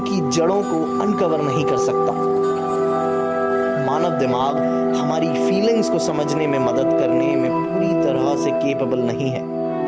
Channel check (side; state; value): both; identical; correlation 1.00